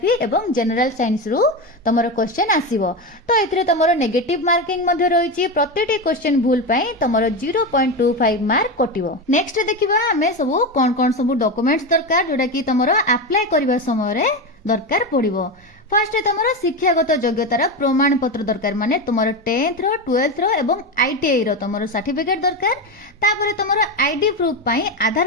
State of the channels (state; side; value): normal; both; correlation 0.16